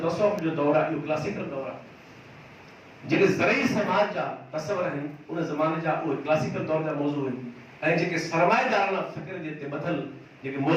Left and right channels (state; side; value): identical; both; correlation 1.00